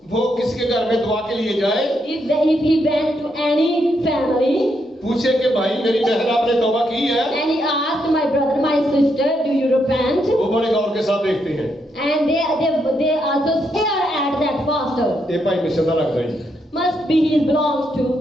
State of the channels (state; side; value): normal; both; correlation 0.79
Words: वो किसी के घर में दुआ के लिए जाए, if he went to any family पूछे कि भाई मेरी बहन आपने तौबा की है, and he asked my brother, my sister, do you repent? वो बड़े गौर के साथ देखते हैं। And they also stare at that pastor. ये भाई मिशन लग रही है, Must be he belongs to